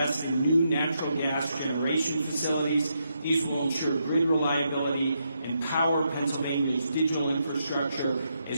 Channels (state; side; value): inverted; both; correlation -0.81